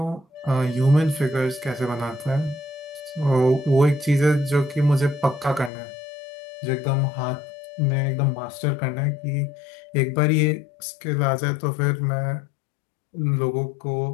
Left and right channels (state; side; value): drops out; right; at 5.7 s